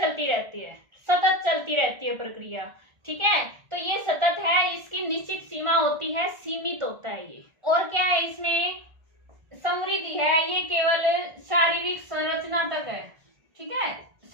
रहती है, सतत चलती रहती है प्रक्रिया, ठीक है, तो ये सतत है, इसकी निश्चित सीमा होती है, सीमित होता है ये। और क्या है इसमें, समृद्धि है, ये केवल शारीरिक संरचना तक है, ठीक है,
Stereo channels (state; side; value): late; left; 1.5 ms